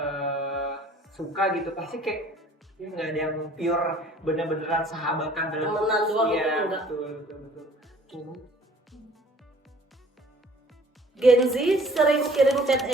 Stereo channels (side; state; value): both; normal; correlation 0.53